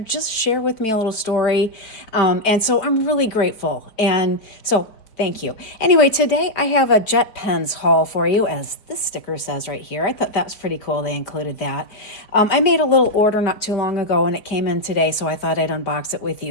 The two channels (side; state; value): right; late; 4.5 ms